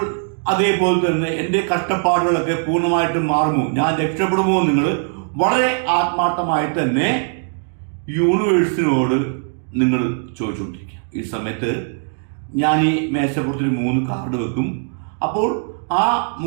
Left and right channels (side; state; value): left; silent; 64 dB below the other